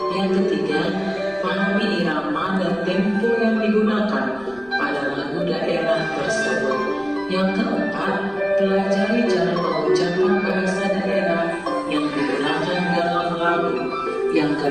Yang ketiga, pahami irama dan tempo yang digunakan pada lagu daerah tersebut. Yang keempat, pelajari cara pengucapan bahasa daerah yang digunakan dalam lagu. Yang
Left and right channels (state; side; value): noise; left; rumble, 25 dB below the sound